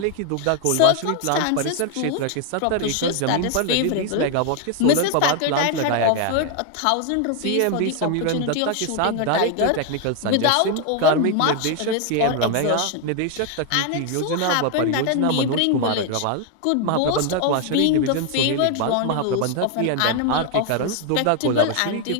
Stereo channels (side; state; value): both; different; correlation 0.01